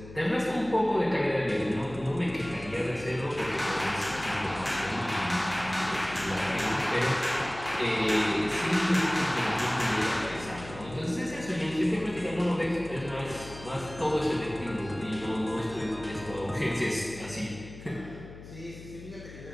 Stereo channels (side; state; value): left; noise; hum, 15 dB below the sound